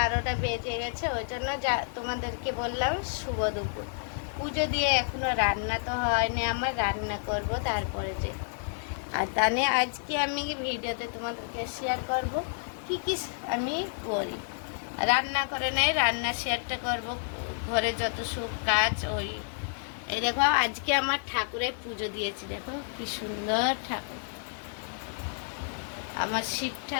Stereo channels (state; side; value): silent; right; digital silence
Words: বেজে গেছে, ওই জন্য তোমাদেরকে বললাম শুভ দুপুর। পুজো দিয়ে এখনো রান্না তো হয়নি, আমার রান্না করব তারপরে যে। আর তাহলে আজকে আমি ভিডিওতে তোমাদেরকে শেয়ার করব কি কি আমি করি। রান্না করে নেই, রান্না শেয়ারটা করব, ঘরে যত সব কাজ। এই দেখো আজকে আমার ঠাকুরের পুজো দিয়েছি, দেখো কি সুন্দর ঠাকুর, আমার শিব